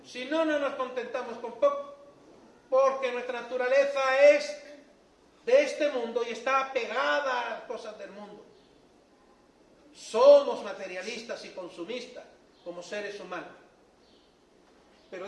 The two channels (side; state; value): both; identical; correlation 1.00